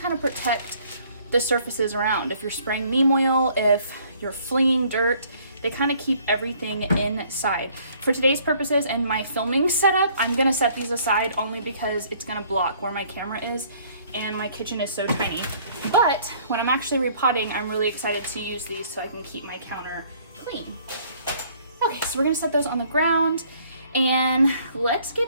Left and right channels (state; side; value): inverted; both; correlation -0.60